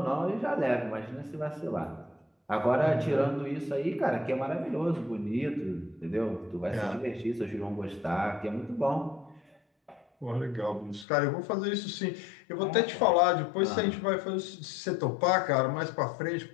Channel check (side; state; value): right; drops out; at 11.1 s